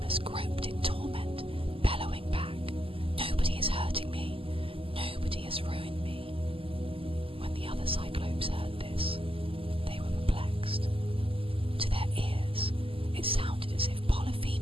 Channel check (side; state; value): left; late; 0.26 ms